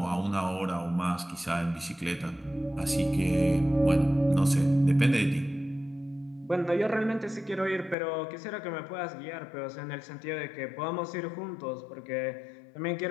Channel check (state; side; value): drops out; right; at 8.0 s